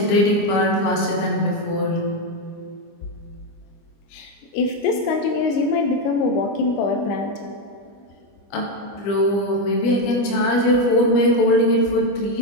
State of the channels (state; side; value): late; right; 25 ms